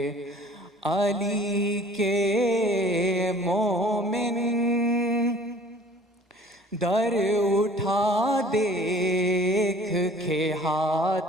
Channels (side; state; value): both; normal; correlation 0.51